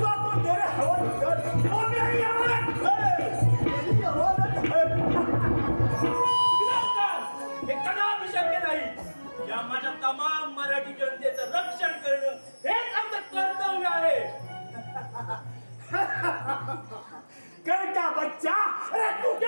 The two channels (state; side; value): inverted; both; correlation -1.00